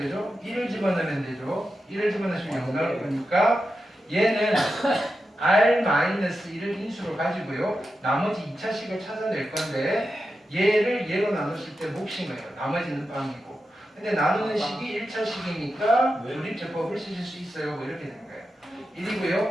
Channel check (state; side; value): normal; both; correlation 0.90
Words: 1을 집어넣으면 되죠. 1을 집어넣으시면 0 나올 거니까 얘는 R-1을 인수로 가지고요. 나머지 2차식을 찾아낼 건데 얘를 얘로 나눴을 때 몫인 거예요. 나머지는 빵이고. 근데 나누는 식이 1차식이니까 조립제법을 쓰실 수 있어요. 뭐 이렇게 되는 거예요.